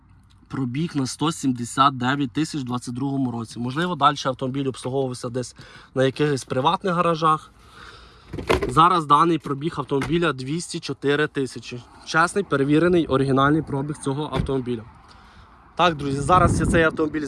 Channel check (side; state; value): both; identical; correlation 1.00